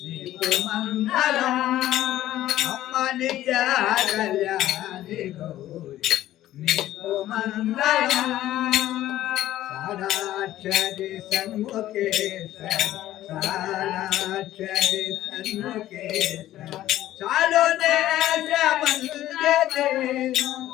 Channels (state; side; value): quieter; right; 13.9 dB